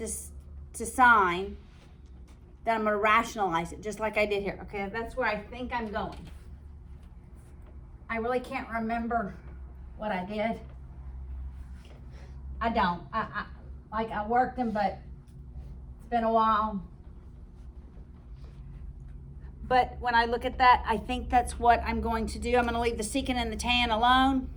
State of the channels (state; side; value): identical; both; correlation 1.00